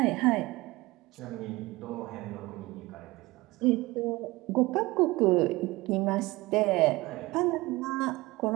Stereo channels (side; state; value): left; quieter; 21.0 dB